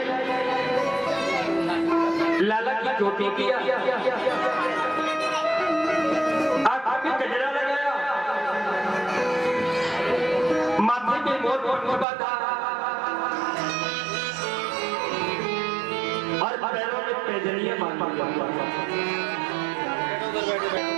लाला की चोटी किया, आंख में गजरा लगाया, माथे में मोर बांधा और पैरों में पैजनियां बांधी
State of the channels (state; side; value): drops out; left; at 12.1 s